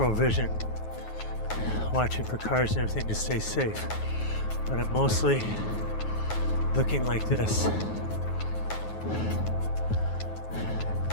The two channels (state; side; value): late; right; 9.4 ms